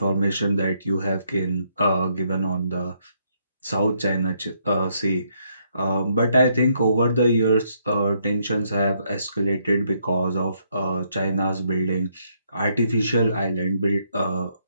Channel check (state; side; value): inverted; both; correlation -0.73